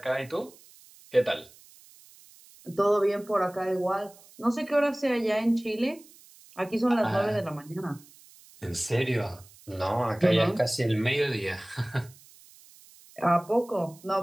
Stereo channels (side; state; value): right; noise; hiss, 24 dB below the sound